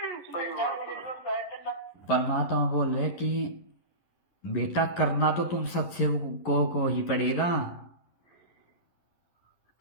परमात्मा बोल रहे कि बेटा करना तो तुम सत्सेवकों को ही पड़ेगा,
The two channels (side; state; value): right; late; 11 ms